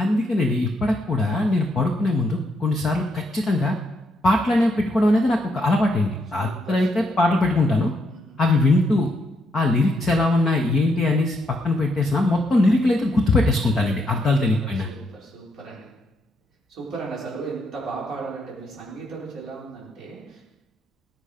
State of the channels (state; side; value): normal; both; correlation 0.76